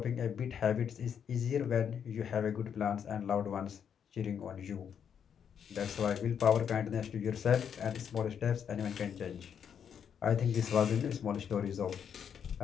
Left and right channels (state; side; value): quieter; right; 7.9 dB